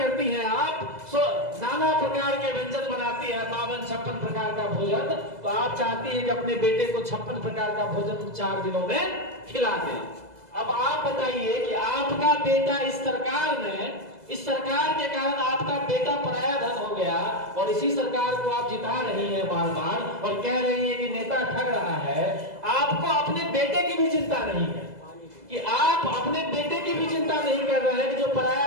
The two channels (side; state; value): left; late; 2.0 ms